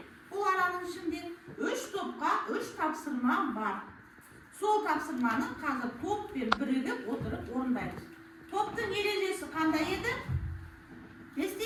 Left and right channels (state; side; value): identical; both; correlation 1.00